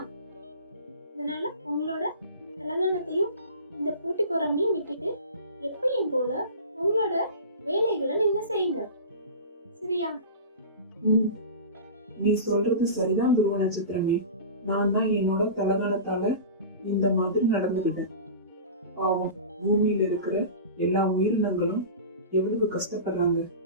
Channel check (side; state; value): both; inverted; correlation -0.33